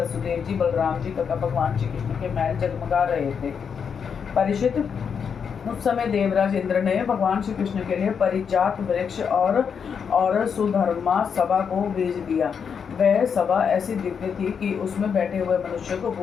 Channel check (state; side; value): quieter; right; 6.8 dB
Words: जी, बलराम जी तथा भगवान श्री कृष्ण के महल जगमगा रहे थे। परीक्षित, उस समय देवराज इंद्र ने भगवान श्री कृष्ण के लिए परिजात वृक्ष और सुधर्मा सभा को भेज दिया। वह सभा ऐसी दिव्य थी कि उसमें बैठे हुए मनुष्य को